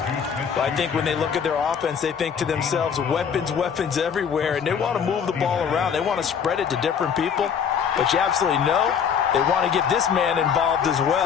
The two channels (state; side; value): quieter; right; 7.2 dB